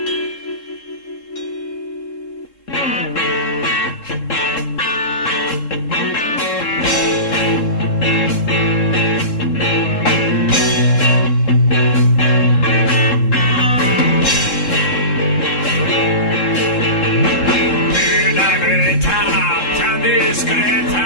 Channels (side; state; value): right; late; 3.7 ms